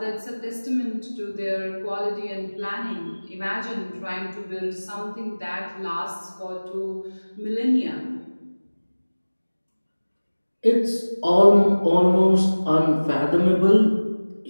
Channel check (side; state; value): both; inverted; correlation -1.00